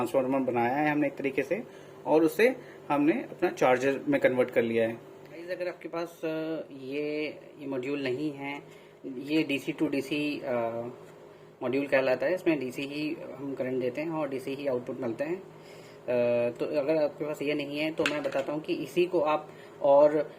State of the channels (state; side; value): identical; both; correlation 1.00